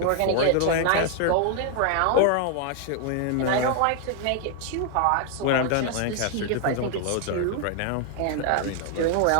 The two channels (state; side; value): different; both; correlation 0.00